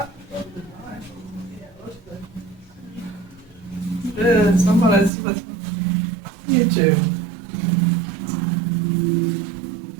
Somebody's with YouTube.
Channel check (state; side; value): drops out; left; at 5.1 s